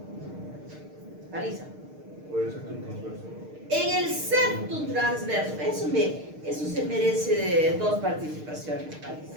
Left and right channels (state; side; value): late; left; 6.6 ms